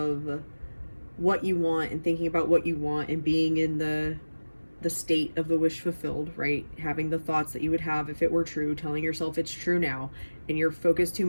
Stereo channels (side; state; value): both; inverted; correlation -1.00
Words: what you want and thinking about what you want and being in the the state of the wish fulfilled, right? Having the thoughts that you would have if it were true, telling yourself it's true now, and you're focused too